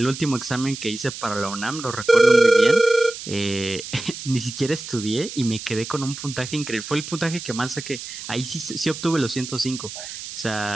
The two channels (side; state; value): right; noise; hiss, 10 dB below the sound